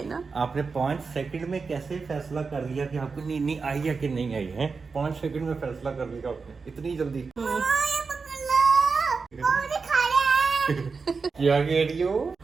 ना। आपने 5 सेकंड में कैसे फैसला कर लिया कि आपको नीनी आई है कि नहीं आई है? 5 सेकंड में फैसला कर लिया आपने, इतनी जल्दी? क्या कह रही हो?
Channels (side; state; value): left; quieter; 4.8 dB